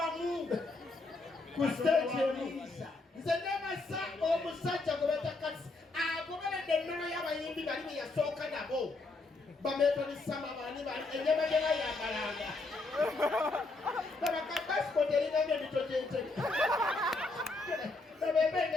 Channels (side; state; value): right; quieter; 3.3 dB